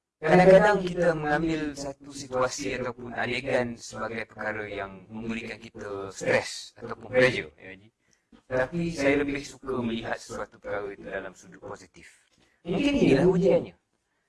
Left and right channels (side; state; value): both; identical; correlation 1.00